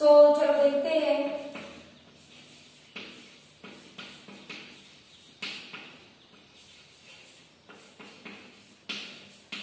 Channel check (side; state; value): both; identical; correlation 1.00